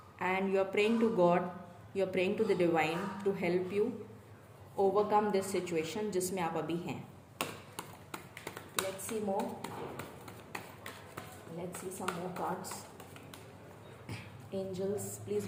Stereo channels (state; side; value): identical; both; correlation 1.00